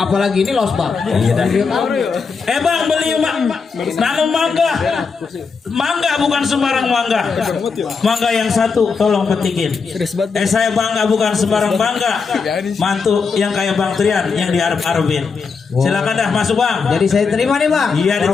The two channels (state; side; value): quieter; right; 5.2 dB